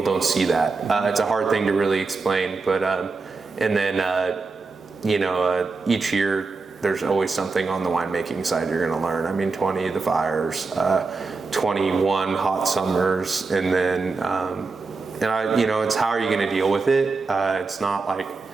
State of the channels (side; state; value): left; quieter; 4.1 dB